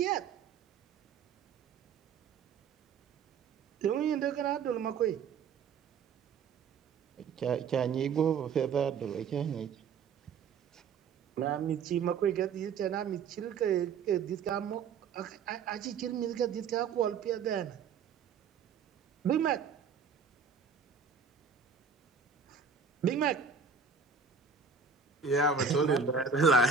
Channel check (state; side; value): quieter; left; 6.0 dB